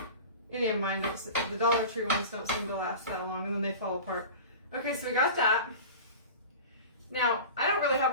Any of mine don't. The Dollar Tree ones don't seem to last that long, and then they fall apart. Okay, so we got that. Now I don't really have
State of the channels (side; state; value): both; inverted; correlation -0.35